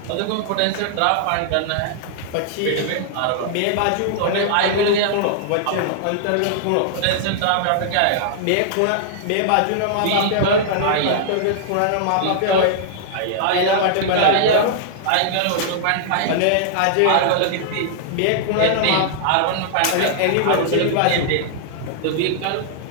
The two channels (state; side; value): different; both; correlation -0.01